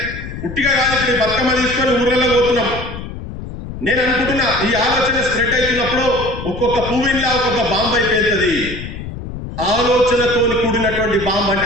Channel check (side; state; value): left; noise; rumble, 9 dB below the sound